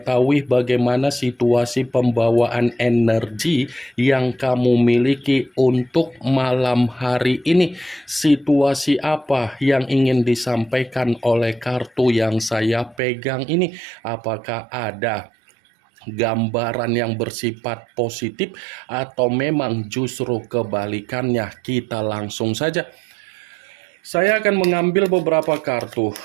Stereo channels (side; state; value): left; drops out; at 13.0 s